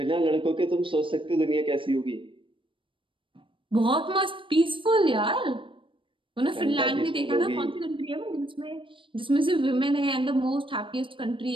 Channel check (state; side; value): late; left; 0.25 ms